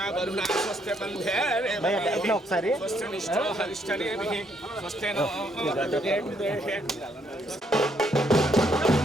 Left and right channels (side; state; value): both; normal; correlation 0.72